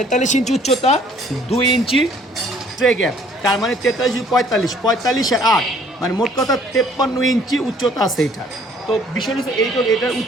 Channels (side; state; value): both; normal; correlation 0.59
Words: ইঞ্চি উচ্চতা, 2 ইঞ্চি ট্রে গ্যাপ, তার মানে 43, 45 আর 8, মানে মোট কথা 53 ইঞ্চি উচ্চতা আছে এটা। তো বিষয় হচ্ছে এটার